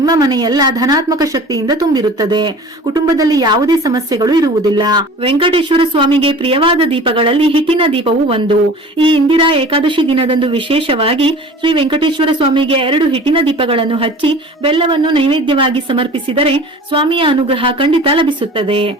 ಮನೆಯೆಲ್ಲ ಧನಾತ್ಮಕ ಶಕ್ತಿಯಿಂದ ತುಂಬಿರುತ್ತದೆ. ಕುಟುಂಬದಲ್ಲಿ ಯಾವುದೇ ಸಮಸ್ಯೆಗಳು ಇರುವುದಿಲ್ಲ. ವೆಂಕಟೇಶ್ವರ ಸ್ವಾಮಿಗೆ ಪ್ರಿಯವಾದ ದೀಪಗಳಲ್ಲಿ ಹಿಟ್ಟಿನ ದೀಪವು ಒಂದು. ಈ ಇಂದಿರಾ ಏಕಾದಶಿ ದಿನದಂದು ವಿಶೇಷವಾಗಿ ಶ್ರೀ ವೆಂಕಟೇಶ್ವರ ಸ್ವಾಮಿಗೆ 2 ಹಿಟ್ಟಿನ ದೀಪಗಳನ್ನು ಹಚ್ಚಿ ಬೆಲ್ಲವನ್ನು ನೈವೇದ್ಯವಾಗಿ ಸಮರ್ಪಿಸಿದರೆ ಸ್ವಾಮಿಯ ಅನುಗ್ರಹ ಖಂಡಿತ ಲಭಿಸುತ್ತದೆ.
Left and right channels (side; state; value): both; normal; correlation 0.41